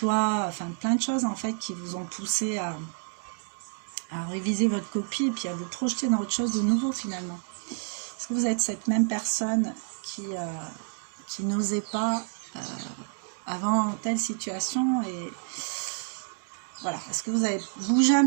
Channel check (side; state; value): left; silent; 59 dB below the other